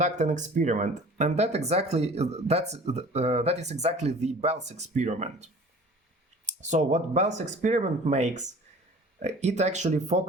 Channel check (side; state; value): both; normal; correlation 0.46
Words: an experiment, and that is exactly the Bell's experiment. So what Bell's experiment makes, it actually